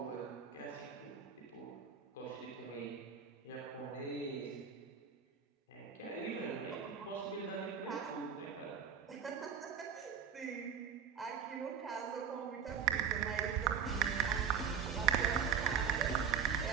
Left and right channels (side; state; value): left; quieter; 7.5 dB